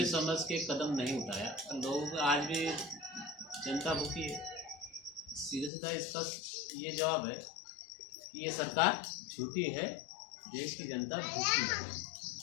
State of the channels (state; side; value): drops out; right; at 5.7 s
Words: समझ के कदम नहीं उठाया। लोग आज भी जनता भूखी है। सीधा सीधा इसका ये जवाब है कि ये सरकार झूठी है, देश की जनता भूखी है।